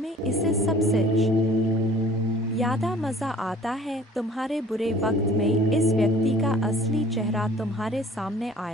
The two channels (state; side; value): normal; both; correlation 0.51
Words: इसे सबसे ज्यादा मजा आता है। तुम्हारे बुरे वक्त में इस व्यक्ति का असली चेहरा तुम्हारे सामने